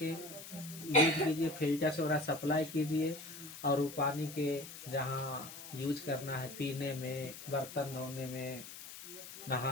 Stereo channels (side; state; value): left; noise; hiss, 13 dB below the sound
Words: यूज कीजिए, फिल्टर से ओकरा सप्लाई कीजिए। और वो पानी के जहाँ यूज करना है, पीने में, बर्तन धोने में,